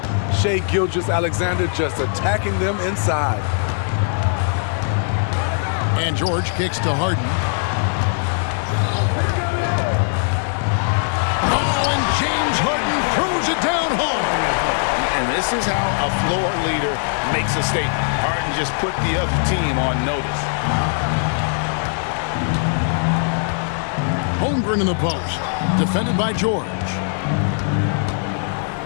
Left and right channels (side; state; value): right; silent; digital silence